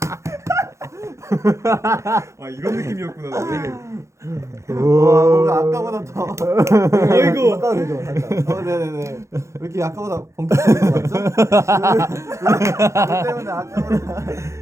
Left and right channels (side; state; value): left; late; 0.14 ms